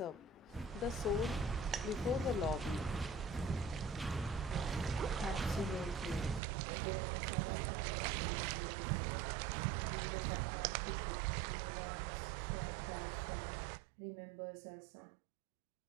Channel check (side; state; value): left; drops out; at 6.4 s